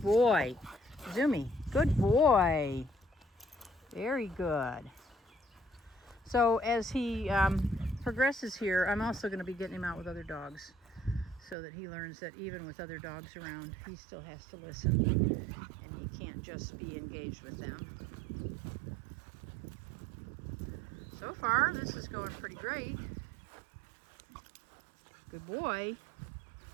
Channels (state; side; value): drops out; left; at 11.6 s